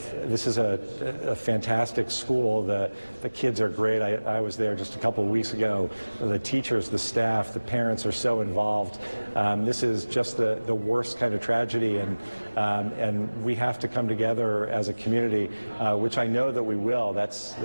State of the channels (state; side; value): inverted; both; correlation -1.00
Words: This is a fantastic school. The kids are great. I was there just a couple of weeks ago. The teachers, the staff, the parents are so involved. This is just the worst kind of tragedy, and we have to come together as a community, which I know that we will. That's